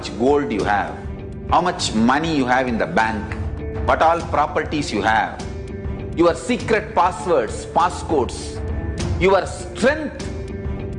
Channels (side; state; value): both; identical; correlation 1.00